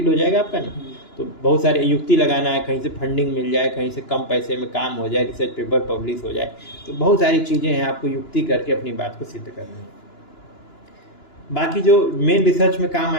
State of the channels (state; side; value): late; right; 2.9 ms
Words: हो जाएगा आपका ना। तो बहुत सारे युक्ति लगाना है, कहीं से फंडिंग मिल जाए, कहीं से कम पैसे में काम हो जाए, रिसर्च पेपर पब्लिश हो जाए, तो बहुत सारी चीज़ें हैं, आपको युक्ति करके अपनी बात को सिद्ध करनी है। बाकी जो मेन रिसर्च में काम